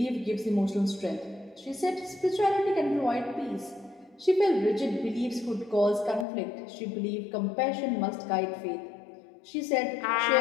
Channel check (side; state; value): right; drops out; at 6.2 s